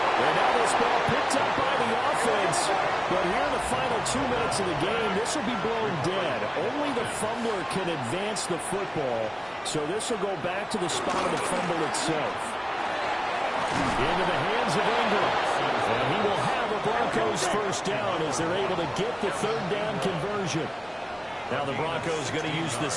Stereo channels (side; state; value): both; identical; correlation 1.00